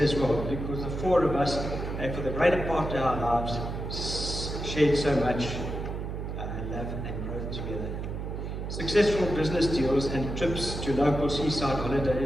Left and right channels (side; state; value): right; noise; hum, 5 dB below the sound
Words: as well, because the four of us, and for the greater part of our lives, shared so much love and growth together. Successful business deals and trips to local seaside